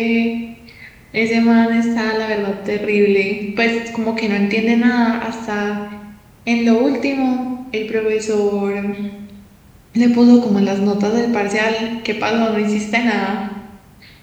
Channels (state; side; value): identical; both; correlation 1.00